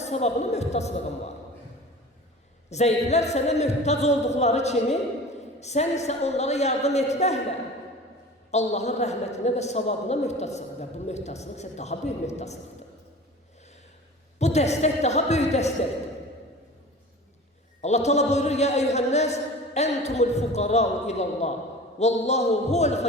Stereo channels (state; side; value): normal; both; correlation 0.38